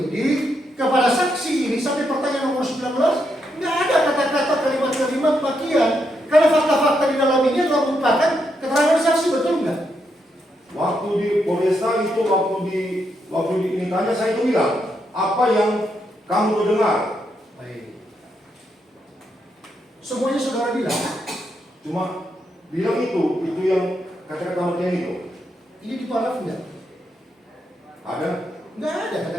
kepada saksi ini sampai pertanyaan nomor 19 nggak ada kata-kata kalimat-kalimat makian karena fakta-fakta di dalam ini adalah merupakan keterangan saksi, betul nggak? Waktu di Polresta itu waktu ditanya saya itu bilang apa yang kamu dengar. Baik. Semuanya saudara bilang. Cuma bilang itu yang kata-kata makian itu. Ini di paraf nggak? Ada? Nggak ada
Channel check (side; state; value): both; normal; correlation 0.80